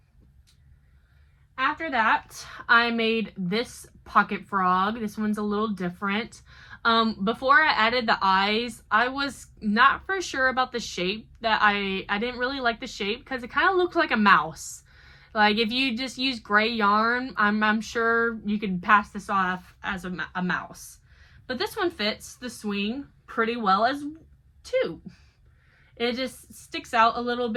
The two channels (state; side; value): identical; both; correlation 1.00